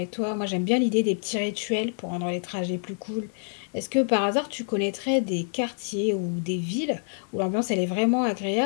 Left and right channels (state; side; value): silent; right; digital silence